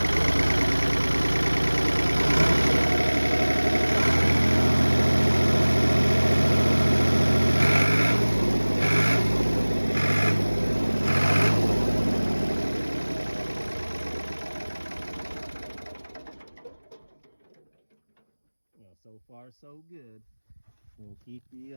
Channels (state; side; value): inverted; both; correlation -1.00